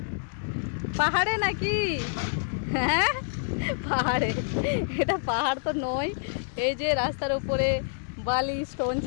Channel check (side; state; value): right; silent; digital silence